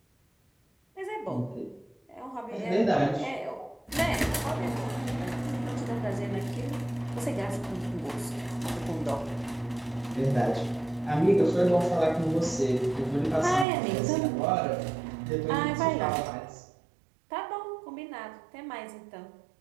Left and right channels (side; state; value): left; drops out; at 13.7 s